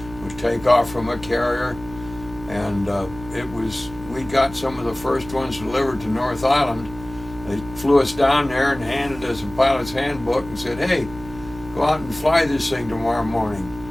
would take off from a carrier, and we got some of the first ones delivered to North Island. They flew us down there and handed us a pilot's handbook and said, "Hey, go out and fly this thing tomorrow morning."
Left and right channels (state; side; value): noise; right; hum, 16 dB below the sound